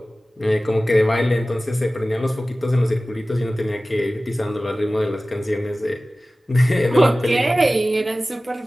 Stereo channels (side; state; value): both; normal; correlation 0.97